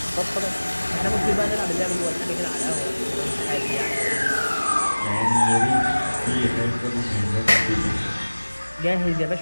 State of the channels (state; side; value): inverted; both; correlation -1.00